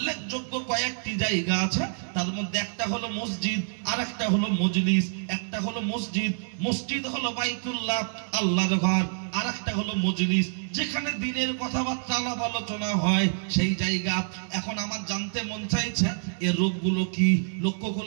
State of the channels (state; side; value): silent; left; digital silence